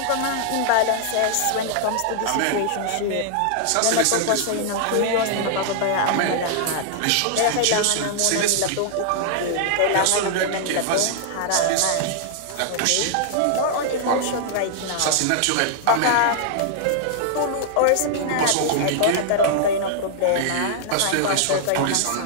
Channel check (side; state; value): both; different; correlation -0.01